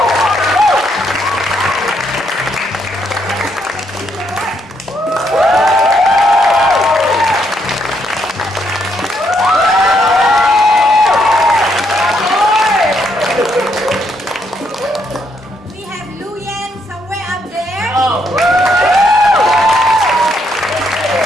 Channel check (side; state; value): both; normal; correlation 0.74